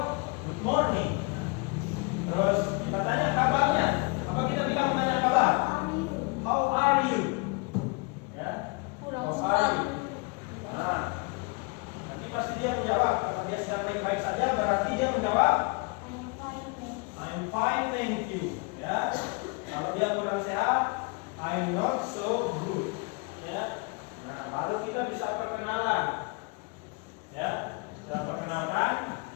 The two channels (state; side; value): quieter; right; 30.5 dB